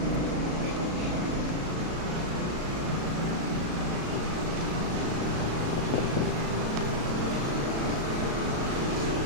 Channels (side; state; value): left; late; 36 ms